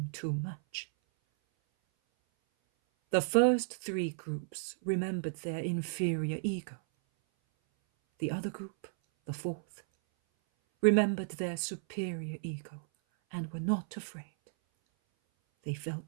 too much. The first 3 groups remembered their inferior ego. The other group, the 4th, remembered their superior ego and were not afraid. They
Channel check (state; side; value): silent; left; 55 dB below the other